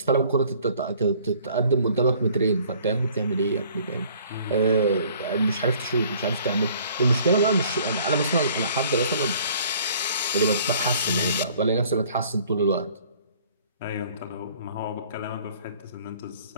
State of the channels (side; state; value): both; inverted; correlation -0.55